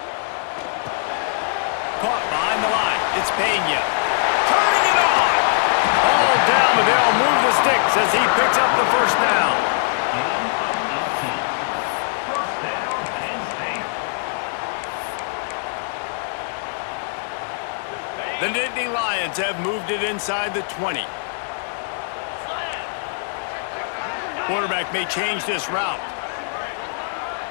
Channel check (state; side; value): silent; right; digital silence